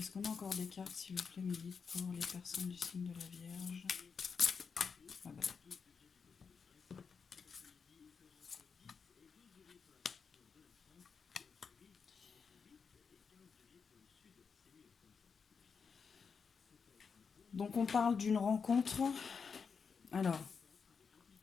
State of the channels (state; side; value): quieter; right; 5.7 dB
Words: qu'on a encore des cartes, s'il vous plaît, mes guides, pour les personnes du signe de la Vierge? Ah bah. Donc on parle d'une rencontre. Alors,